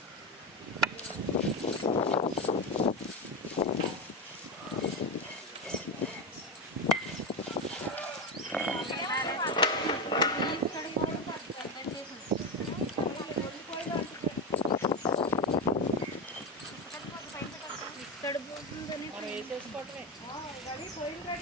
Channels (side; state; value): both; normal; correlation 0.16